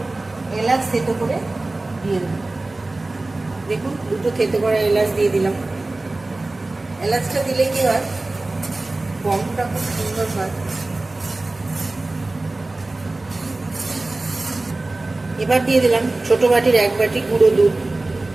এলাচ থেতো করে দিয়ে দেব। দেখুন, দুটো থেতো করা এলাচ দিয়ে দিলাম। এলাচটা দিলে কি হয়, গন্ধটা খুব সুন্দর হয়। এবার দিয়ে দিলাম ছোট বাটির 1 বাটি গুঁড়ো দুধ।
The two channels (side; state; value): left; quieter; 3.0 dB